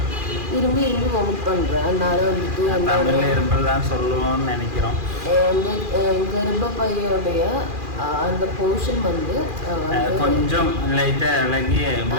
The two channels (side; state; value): left; late; 2.4 ms